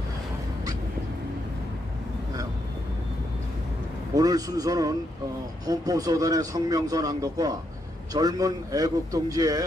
오늘 순서는 헌법소단의 성명서 낭독과 젊은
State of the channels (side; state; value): both; normal; correlation 0.79